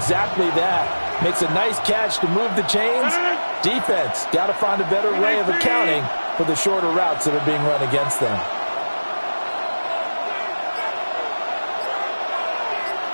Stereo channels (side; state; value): both; inverted; correlation -1.00